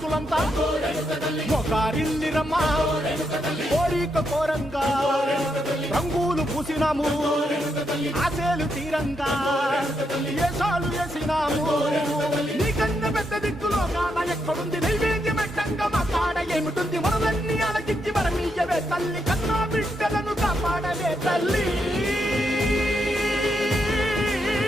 మొగారిల్లిరమ్మా కోరిక కోరంగా రంగులు పూసినాము ఆశలు తీరంగా ఏసాలు వేసినాము నీకన్నా పెద్ద దిక్కులో కాన ఎక్కడుంది నైవేద్యం ఎట్టంగా మా కాడ ఏమిటుంది మనలన్నీ అలకించి మరమీయవే తల్లి కన్నా బిడ్డలను కాపాడవే తల్లి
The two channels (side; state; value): both; normal; correlation 0.81